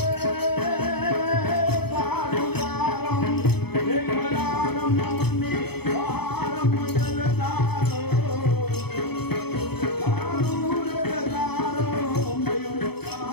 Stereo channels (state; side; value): late; right; 0.97 ms